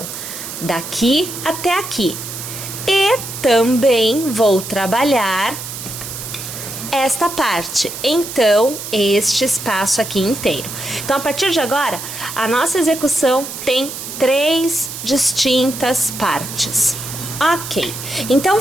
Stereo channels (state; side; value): noise; right; hiss, 9 dB below the sound